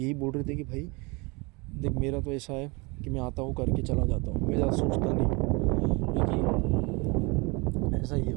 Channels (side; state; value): left; quieter; 27.5 dB